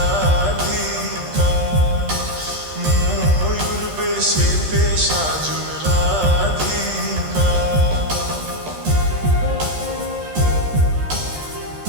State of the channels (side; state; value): left; late; 13 ms